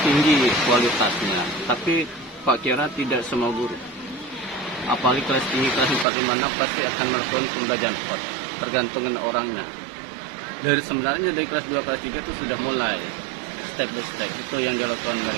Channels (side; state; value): left; drops out; at 6.1 s